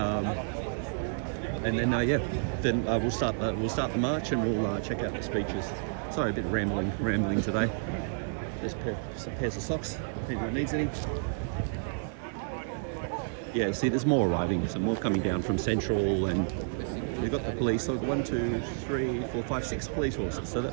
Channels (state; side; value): silent; left; digital silence